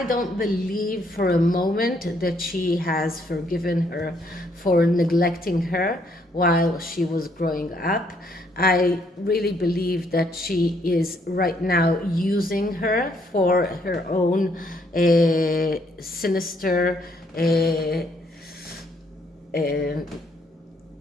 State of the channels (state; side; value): normal; both; correlation 0.70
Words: don't believe for a moment that she has forgiven her for neglecting her while she was growing up. I really believe that she is right now using her for her own sinister